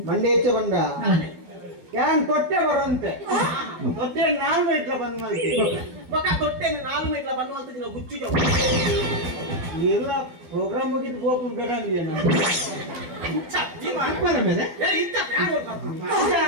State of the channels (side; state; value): left; late; 12 ms